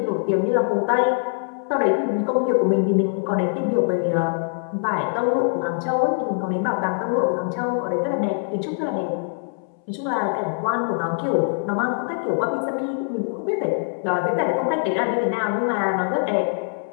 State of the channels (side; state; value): right; silent; 63 dB below the other